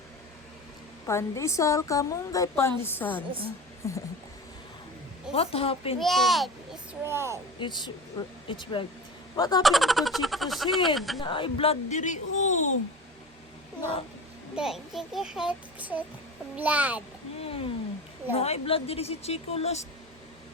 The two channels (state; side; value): normal; both; correlation 0.32